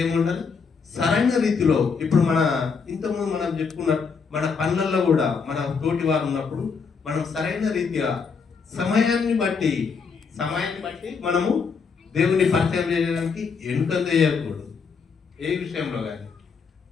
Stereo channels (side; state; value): right; quieter; 5.5 dB